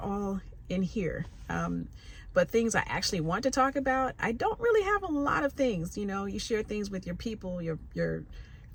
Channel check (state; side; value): identical; both; correlation 1.00